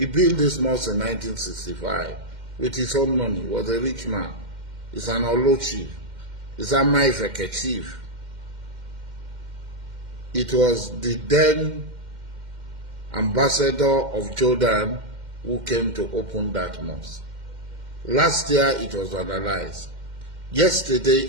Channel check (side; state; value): left; late; 2.1 ms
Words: built this mosque in 1965 with his own money. He was a rich man. He's an Olo chief. He's Amai Ifeke chief. It was the then ambassador of Jordan who came to open that mosque. Last year it was vandalized. Yesterday